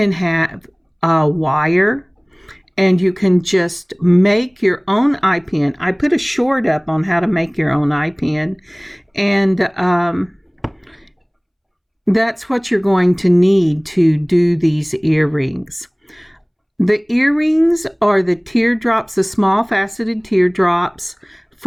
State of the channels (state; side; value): identical; both; correlation 1.00